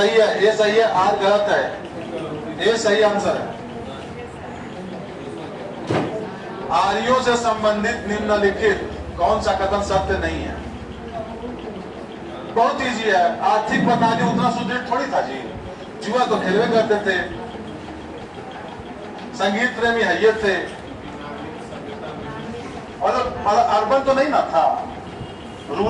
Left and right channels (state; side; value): identical; both; correlation 1.00